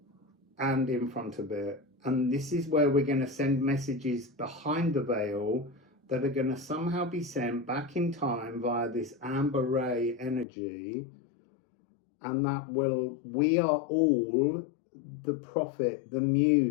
and in front of it. And this is where we're going to send messages behind the veil that are going to somehow be sent back in time via this amber ray energy. And that we are all the prophet, the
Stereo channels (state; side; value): drops out; right; at 10.5 s